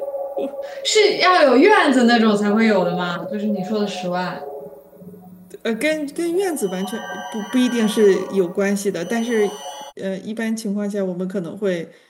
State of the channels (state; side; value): identical; both; correlation 1.00